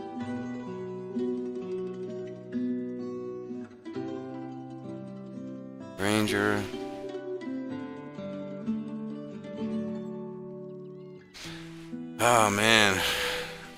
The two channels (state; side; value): identical; both; correlation 1.00